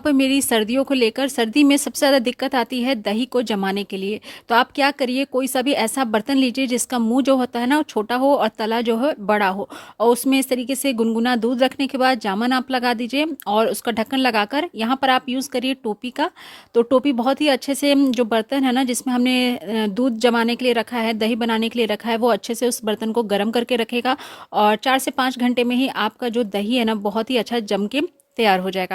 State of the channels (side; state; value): both; identical; correlation 1.00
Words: मेरी सर्दियों को लेकर। सर्दी में सबसे ज़्यादा दिक्कत आती है दही को जमाने के लिए। तो आप क्या करिए, कोई सा भी ऐसा बर्तन लीजिए जिसका मुंह जो होता है ना वो छोटा हो और तला जो है बड़ा हो, और उसमें इस तरीके से गुनगुना दूध रखने के बाद जामन आप लगा दीजिए और उसका ढक्कन लगाकर यहाँ पर आप यूज़ करिए टोपी का। तो टोपी बहुत ही अच्छे से जो बर्तन है ना जिसमें हमने दूध जमाने के लिए रखा है, दही बनाने के लिए रखा है, वो अच्छे से उस बर्तन को गर्म करके रखेगा और 4 से 5 घंटे में ही आपका जो दही है ना बहुत ही अच्छा जम के तैयार हो